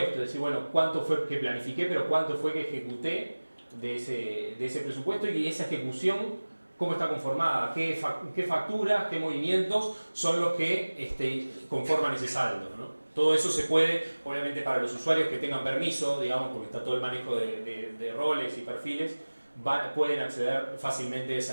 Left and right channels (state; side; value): inverted; both; correlation -1.00